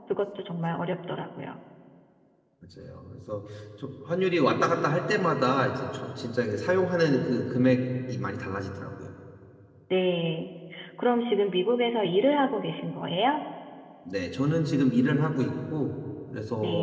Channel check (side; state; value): both; identical; correlation 1.00